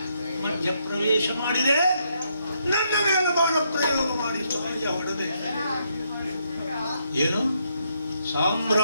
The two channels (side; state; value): both; inverted; correlation -0.76